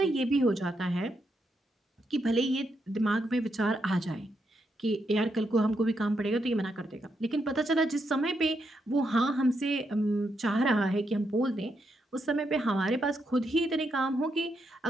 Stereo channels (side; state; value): both; normal; correlation 0.81